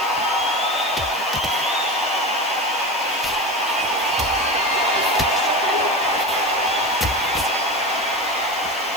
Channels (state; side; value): noise; left; hiss, 17 dB below the sound